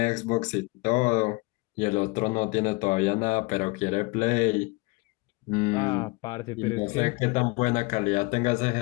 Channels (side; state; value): right; quieter; 26.1 dB